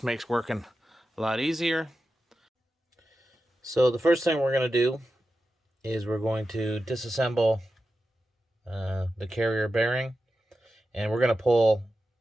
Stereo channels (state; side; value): normal; both; correlation 0.91